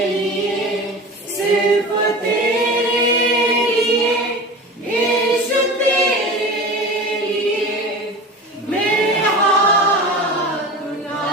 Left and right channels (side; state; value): both; normal; correlation 0.33